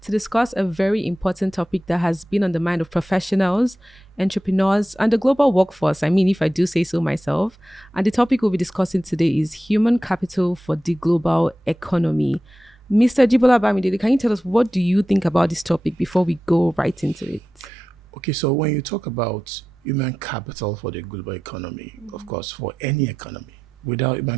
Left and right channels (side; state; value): both; normal; correlation 0.92